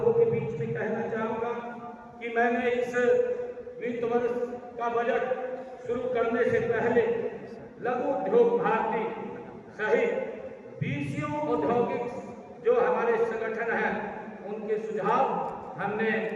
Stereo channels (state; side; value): identical; both; correlation 1.00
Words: के बीच में कहना चाहूँगा कि मैंने इस वित्त वर्ष का बजट शुरू करने से पहले लघु उद्योग भारती सहित 20 औद्योगिक जो हमारे संगठन हैं उनके सुझाव हमने